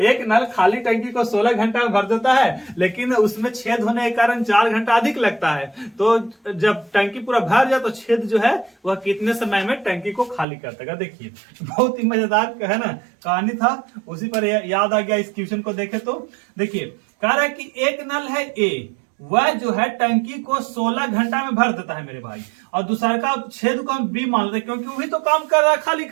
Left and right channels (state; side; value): drops out; left; at 10.5 s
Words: नल खाली टंकी को 16 घंटा में भर देता है लेकिन उसमें छेद होने के कारण 4 घंटा अधिक लगता है। तो जब टंकी पूरा भर जाए तो छेद जो है वह कितने समय में टंकी को खाली कर देगा। देखिए बहुत ही मजेदार है ना कहानी था, उसी पर याद आ गया इस क्वेश्चन को देखे तो। देखिए कह रहा है कि एक नल है ए, वह जो है टंकी को 16 घंटा में भर देता है मेरे भाई, और दूसरा का छेद को हम बी मान लेते हैं क्योंकि वही तो काम कर रहा है खाली